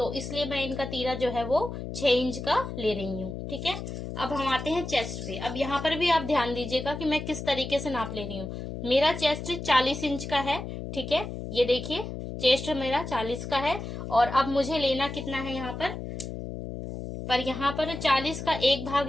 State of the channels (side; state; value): left; noise; hum, 7 dB below the sound